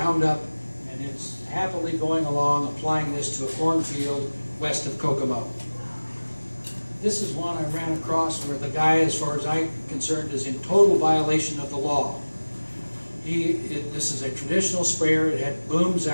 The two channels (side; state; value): both; inverted; correlation -1.00